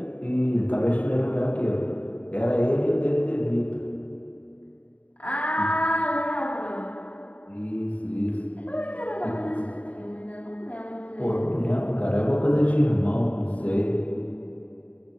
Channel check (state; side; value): late; right; 0.068 ms